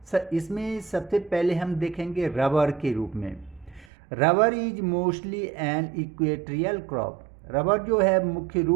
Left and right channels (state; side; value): drops out; left; at 3.9 s